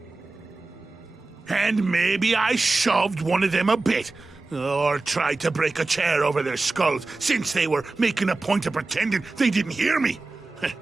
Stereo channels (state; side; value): quieter; left; 3.4 dB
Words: And maybe I shoved one of them a bit, or tried to break a chair over their skulls, since they were making a point of pretending they didn't hear me.